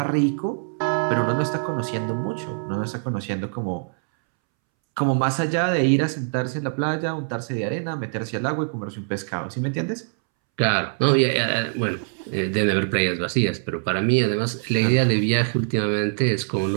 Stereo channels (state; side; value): silent; left; 63 dB below the other